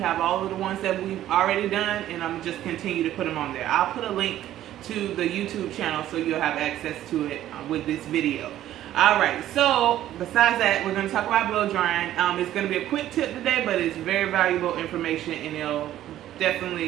all of the ones that we've already done and I'm just continue to put them on there. I'll put a link to the YouTube channel so you'll have access to it with this video. Alright, so besides that, we're going to talk about blow drying. It's going to be a quick tip today, but it's very valuable information and it'll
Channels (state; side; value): quieter; left; 12.8 dB